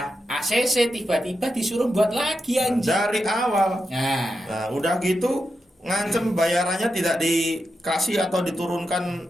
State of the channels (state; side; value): normal; both; correlation 0.88